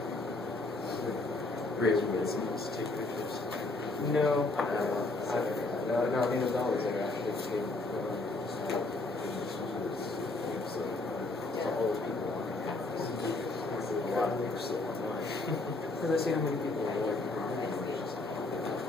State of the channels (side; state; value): right; quieter; 3.2 dB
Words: Raise your voice and let's take pictures. No. No, I mean, there's always there actually. All those people on here. A lot of them are still online. So let's see how many people are working.